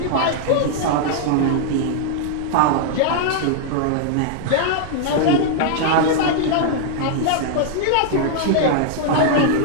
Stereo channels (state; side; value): different; both; correlation -0.01